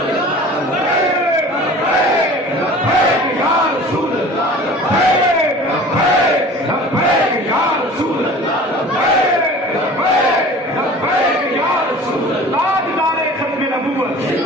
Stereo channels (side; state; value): both; normal; correlation 0.43